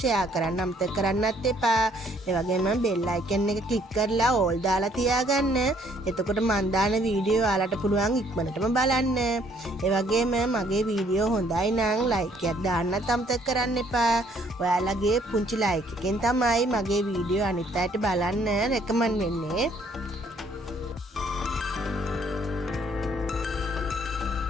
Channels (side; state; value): both; normal; correlation 0.64